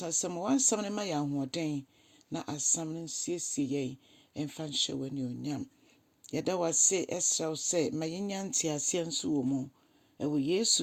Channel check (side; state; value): both; identical; correlation 1.00